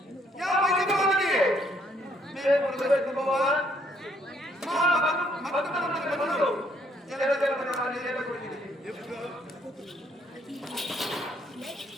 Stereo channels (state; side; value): normal; both; correlation 0.68